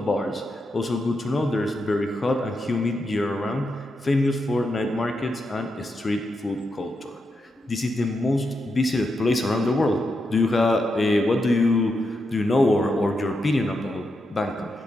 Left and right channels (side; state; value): both; normal; correlation 0.85